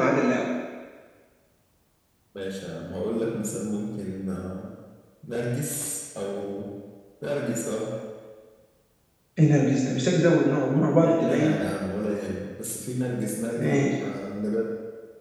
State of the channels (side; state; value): both; identical; correlation 1.00